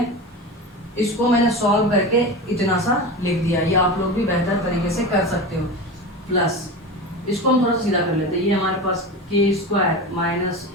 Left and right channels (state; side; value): normal; both; correlation 0.26